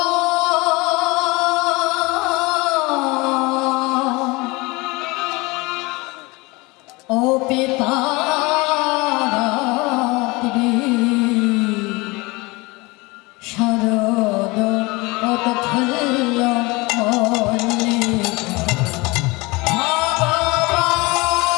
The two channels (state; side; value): quieter; right; 24.3 dB